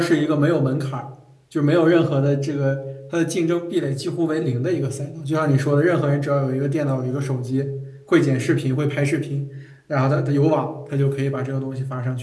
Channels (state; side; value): identical; both; correlation 1.00